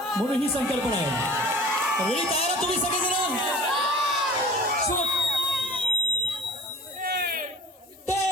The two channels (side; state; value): both; normal; correlation 0.41